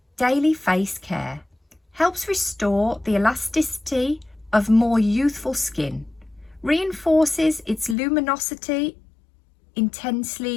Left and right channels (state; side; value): drops out; right; at 8.0 s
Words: Daily Face Care. Helps restore the elasticity of more youthful skin. Reinforces its luminosity,